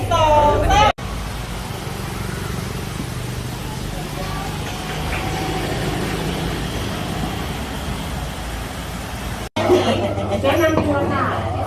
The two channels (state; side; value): identical; both; correlation 1.00